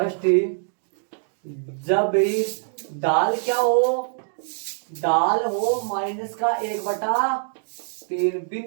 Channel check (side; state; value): left; silent; digital silence